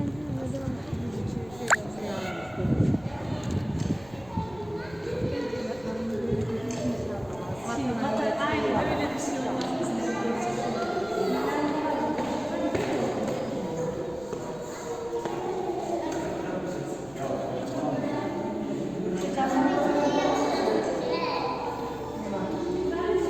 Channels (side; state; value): left; noise; rumble, 21 dB below the sound